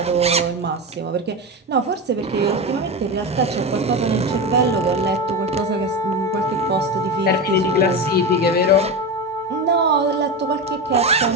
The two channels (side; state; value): both; normal; correlation 0.19